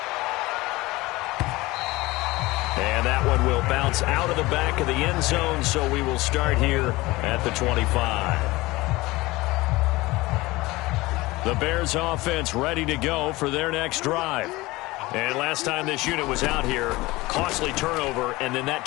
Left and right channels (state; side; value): quieter; right; 20.6 dB